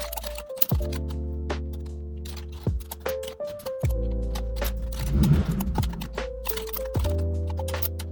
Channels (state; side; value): identical; both; correlation 1.00